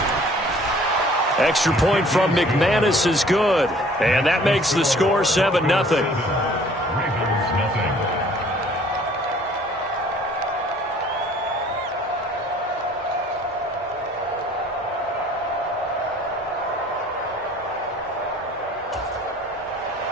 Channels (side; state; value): both; normal; correlation 0.54